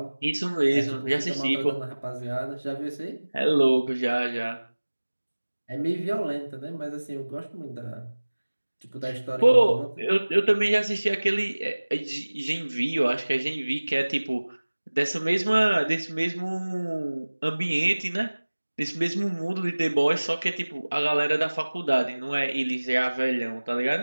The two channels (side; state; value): both; inverted; correlation -1.00